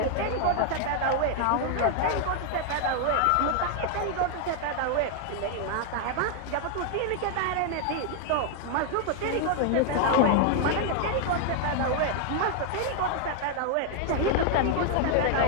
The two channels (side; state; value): both; different; correlation 0.00